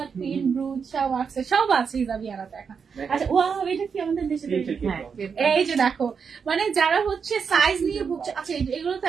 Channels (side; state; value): left; quieter; 6.1 dB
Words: পিন, ব্রুচ সব আছে, সব আছে হিজাবিয়ানা দেখা। আচ্ছা ওয়াও, এটা কি আমাদের দেশে তৈরি? এই যে দেখো, মানে যারা হচ্ছে সাইজ নিয়ে ভুগছে। আচ্ছা এগুলো তো